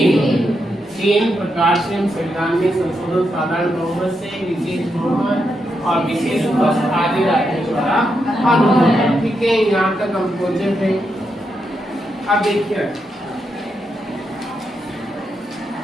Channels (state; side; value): normal; both; correlation 0.83